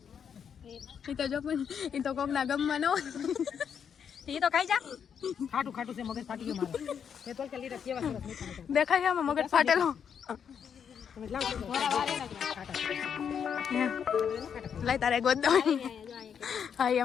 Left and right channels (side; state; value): right; quieter; 7.6 dB